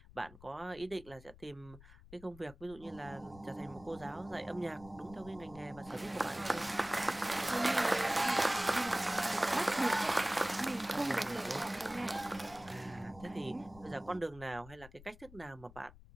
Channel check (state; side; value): noise; left; rumble, 20 dB below the sound